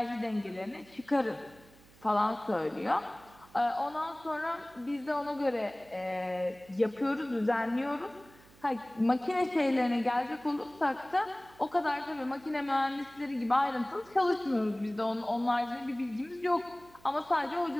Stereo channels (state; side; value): noise; right; hum, 25 dB below the sound